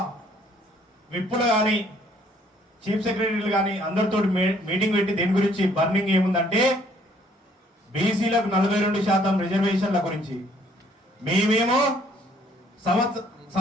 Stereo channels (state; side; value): normal; both; correlation 0.63